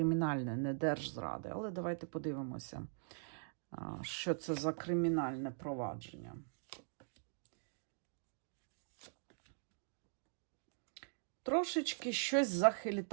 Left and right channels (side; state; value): left; silent; digital silence